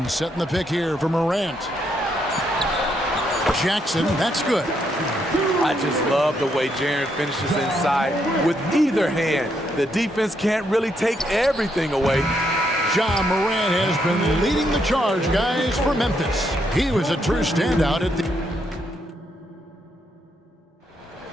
setting the pick here for Morant. Jackson, that's good. I just love the way Jaren finishes inside with either hand. The defense can't really take everything away. Ja Morant has been leading the charge, guys, for Memphis. He was a true standout at the...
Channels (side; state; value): both; normal; correlation 0.76